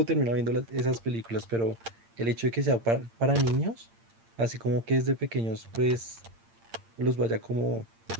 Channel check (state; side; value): late; left; 8.8 ms